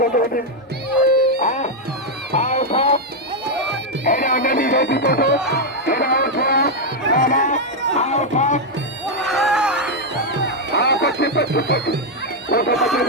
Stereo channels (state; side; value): normal; both; correlation 0.00